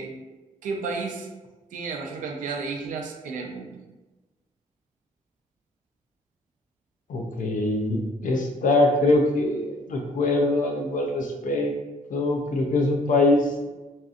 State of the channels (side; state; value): both; normal; correlation 0.56